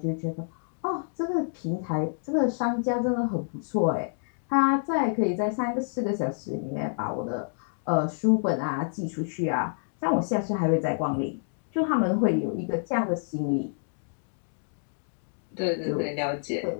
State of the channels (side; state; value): right; silent; digital silence